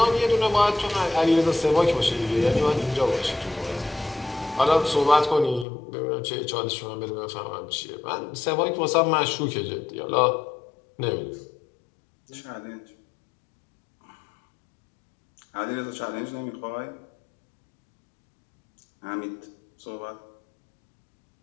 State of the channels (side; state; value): right; drops out; at 5.7 s